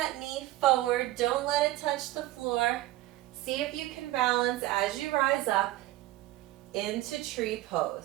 knee forward. Don't let it touch the floor. See if you can balance as you rise up into tree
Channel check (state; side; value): quieter; left; 16.5 dB